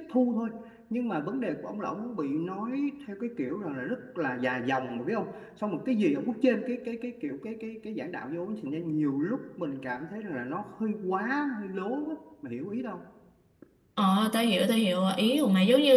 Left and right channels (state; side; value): identical; both; correlation 1.00